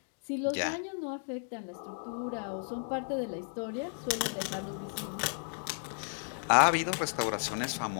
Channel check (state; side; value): silent; right; digital silence